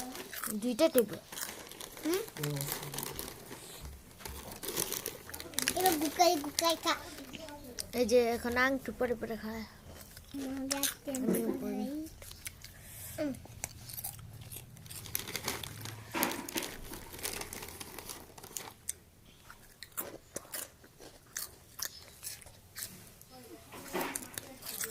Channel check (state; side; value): identical; both; correlation 1.00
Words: দুইটা টেবিল এবার গুকাই গুকাই খা এই যে এখন আংটু পরে পরে খায়